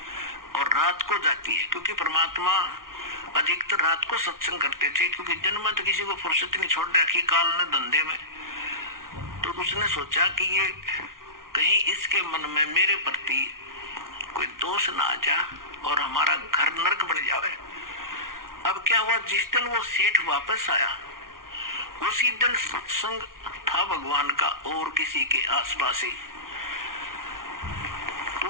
और रात को जाती है, क्योंकि परमात्मा अधिकतर रात को सत्संग करते थे, क्योंकि जन्म में तो किसी को फुर्सत नहीं छोड़ रखी काल ने धंधे में। तो उसने सोचा कि ये कहीं इसके मन में मेरे प्रति कोई दोष ना आ जा और हमारा घर नरक बन जावे। अब क्या हुआ, जिस दिन वो सेठ वापस आया उसी दिन सत्संग था भगवान का और किसी के आसपास ही।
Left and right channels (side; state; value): left; late; 0.92 ms